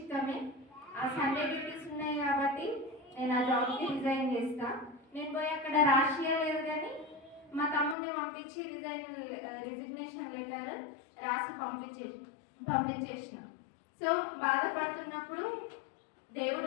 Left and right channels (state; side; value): drops out; right; at 8.0 s